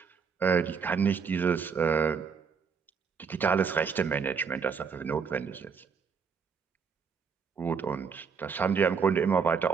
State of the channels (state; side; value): quieter; left; 6.0 dB